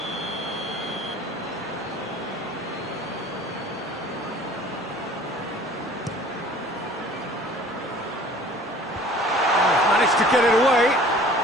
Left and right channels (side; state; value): both; normal; correlation 0.49